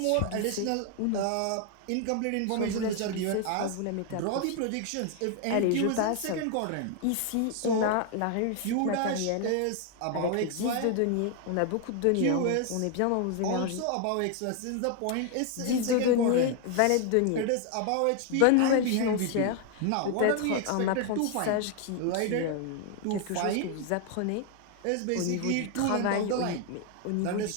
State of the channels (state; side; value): different; both; correlation 0.00